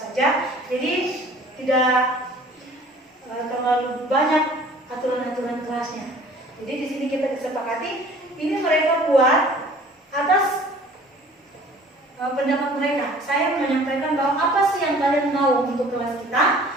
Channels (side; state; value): both; normal; correlation 0.50